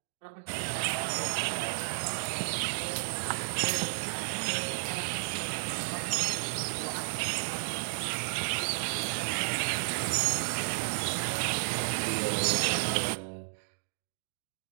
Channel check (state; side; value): silent; left; digital silence